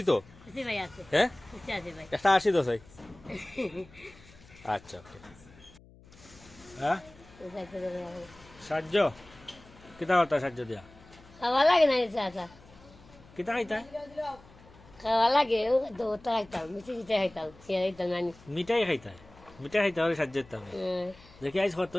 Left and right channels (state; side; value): noise; left; hum, 24 dB below the sound